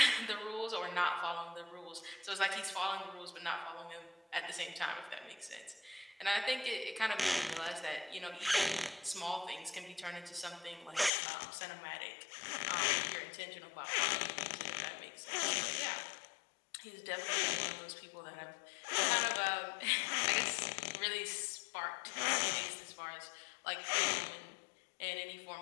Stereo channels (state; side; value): drops out; right; at 11.1 s